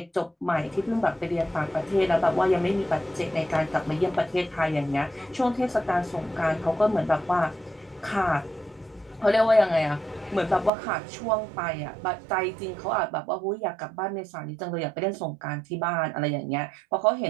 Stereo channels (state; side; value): drops out; left; at 10.7 s